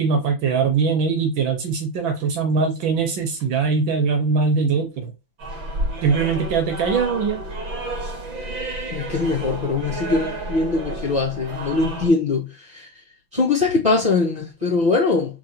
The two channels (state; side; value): late; left; 5.9 ms